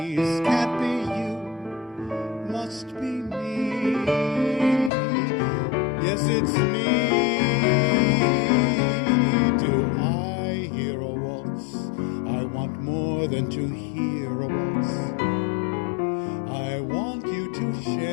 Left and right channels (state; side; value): drops out; right; at 4.9 s